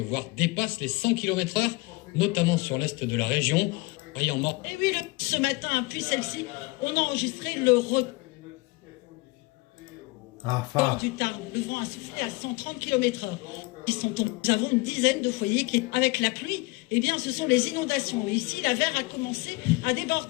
voire dépassent les 100 km/h, notamment sur l'est de la région. Rien mort. Et oui, ce matin, puis celle-ci, on a enregistré le record du Tarn. Le vent a soufflé à 130 km/h. Nous avons une dizaine de foyers qui, avec la pluie, eh bien, ce sont les inondations. Et ici, la Vère a commencé à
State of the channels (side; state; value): right; quieter; 24.2 dB